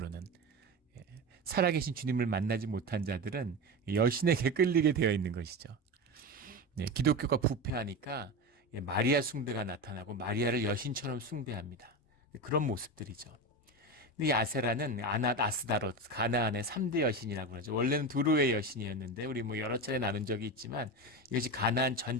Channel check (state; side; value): normal; both; correlation 0.22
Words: 살아계신 주님을 만나지 못한 자들은 여신에게 끌리게 되어 있는 것이죠. 기독교가 부패하니까 마리아 숭배가 나타나고 마리아를 여신처럼 숭배합니다. 그런 모습들이죠. 이 아세라는 아스다로트, 가나안의 3대 여신이라고 하죠. 원래는 두루의 여신이었는데 우리 뭐 여러 차례 나눈 적이 있지만 이것이 가나안